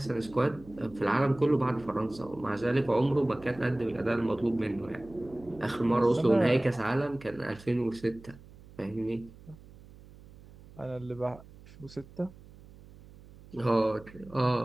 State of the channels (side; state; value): right; noise; hum, 21 dB below the sound